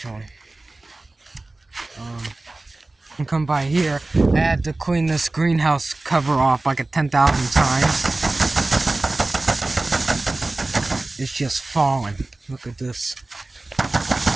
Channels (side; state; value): left; quieter; 3.0 dB